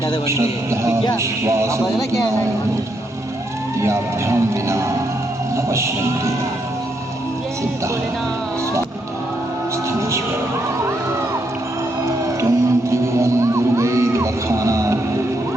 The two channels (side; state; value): both; normal; correlation 0.78